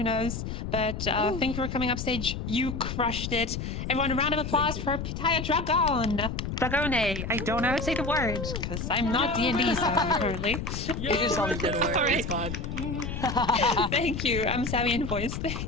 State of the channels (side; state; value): left; noise; rumble, 5 dB below the sound